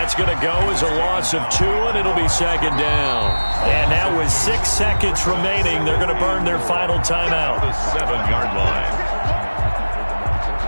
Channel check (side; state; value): both; inverted; correlation -1.00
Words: going to go as a loss of 2, and it'll be 2nd down. And now with 6 seconds remaining, they're going to burn their final timeout. The 7-yard line.